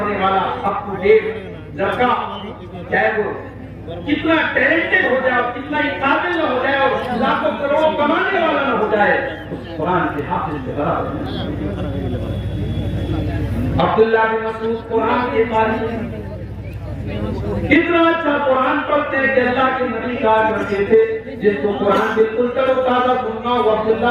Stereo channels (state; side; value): identical; both; correlation 1.00